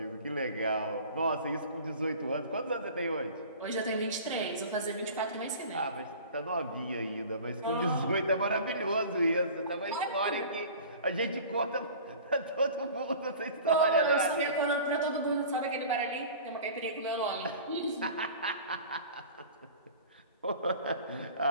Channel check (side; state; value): both; inverted; correlation -0.42